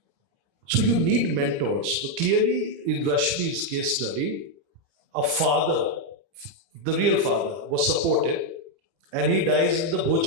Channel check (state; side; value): late; left; 30 ms